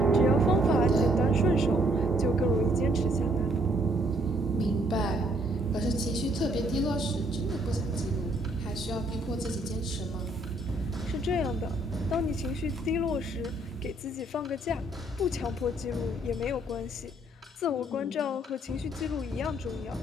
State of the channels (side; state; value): both; normal; correlation 0.67